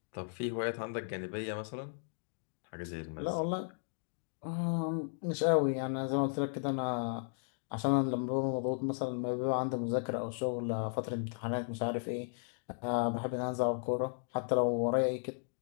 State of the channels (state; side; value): silent; right; digital silence